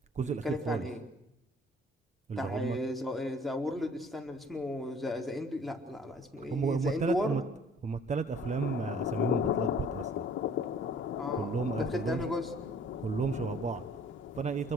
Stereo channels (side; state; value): both; normal; correlation 0.54